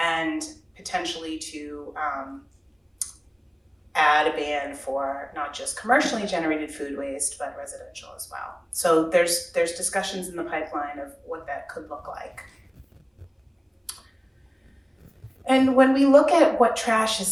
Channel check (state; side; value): identical; both; correlation 1.00